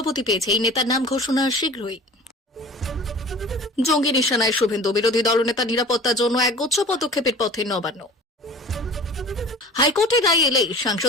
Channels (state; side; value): normal; both; correlation 0.41